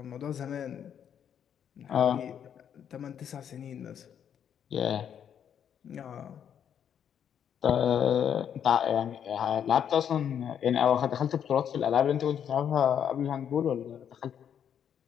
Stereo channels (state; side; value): quieter; right; 8.7 dB